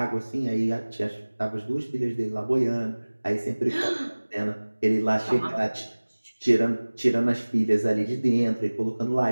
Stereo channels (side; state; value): both; inverted; correlation -1.00